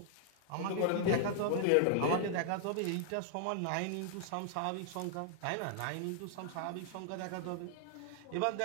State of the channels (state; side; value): different; both; correlation -0.01